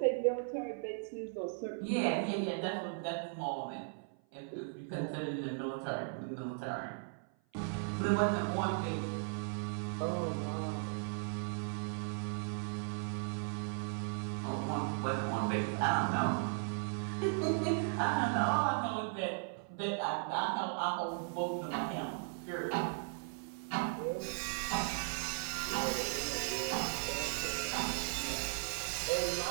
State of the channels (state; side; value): silent; left; 53 dB below the other